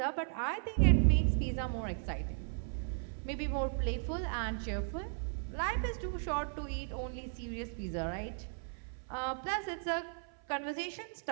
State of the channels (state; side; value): silent; left; 54 dB below the other